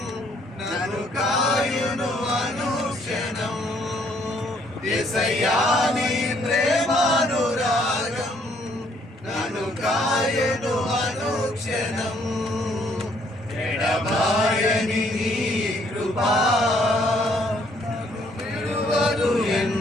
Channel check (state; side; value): normal; both; correlation 0.66